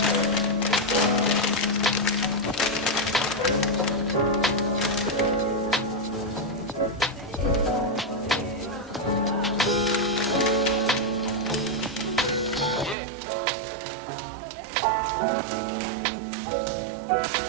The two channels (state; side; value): drops out; left; at 13.0 s